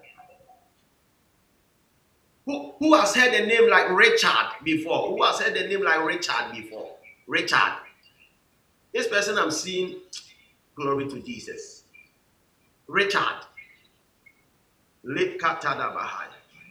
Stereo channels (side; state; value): both; identical; correlation 1.00